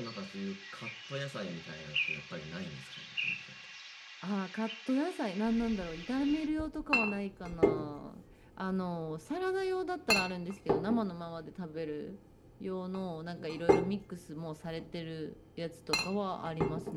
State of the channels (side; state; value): both; identical; correlation 1.00